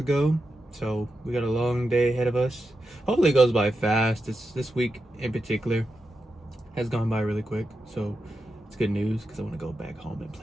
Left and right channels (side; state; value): both; normal; correlation 0.89